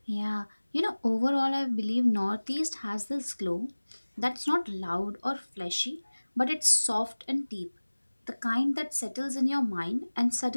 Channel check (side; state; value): both; inverted; correlation -1.00